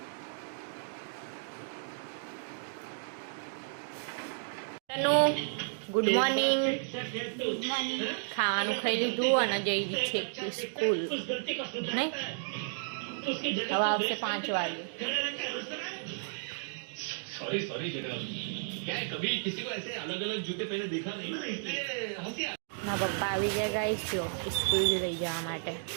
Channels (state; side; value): silent; left; digital silence